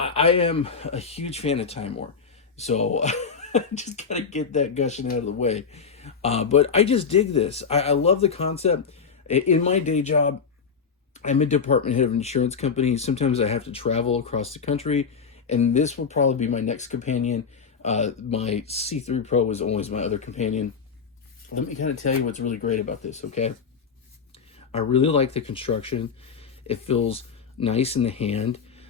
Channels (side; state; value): right; quieter; 5.8 dB